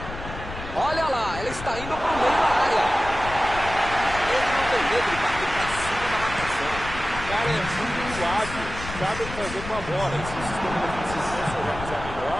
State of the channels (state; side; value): noise; left; rumble, 10 dB below the sound